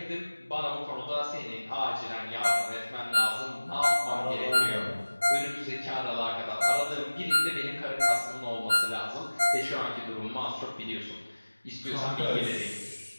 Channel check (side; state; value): both; inverted; correlation -1.00